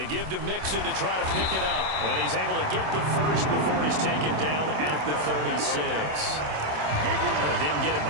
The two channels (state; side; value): late; left; 27 ms